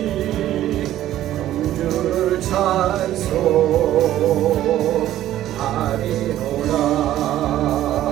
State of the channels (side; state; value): left; quieter; 13.1 dB